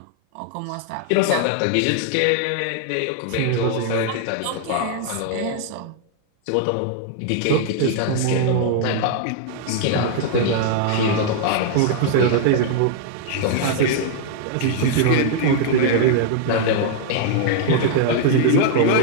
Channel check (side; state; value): both; different; correlation -0.01